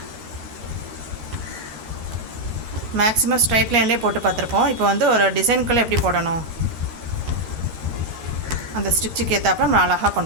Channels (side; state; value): left; late; 13 ms